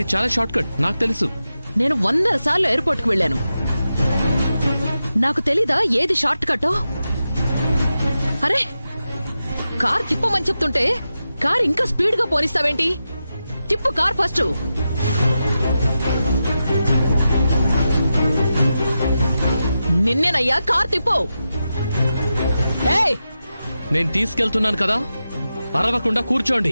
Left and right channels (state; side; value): inverted; both; correlation -0.90